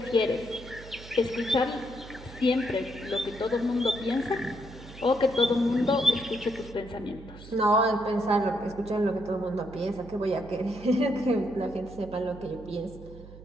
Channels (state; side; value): noise; right; hum, 17 dB below the sound